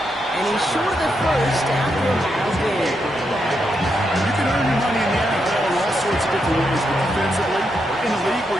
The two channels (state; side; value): normal; both; correlation 0.82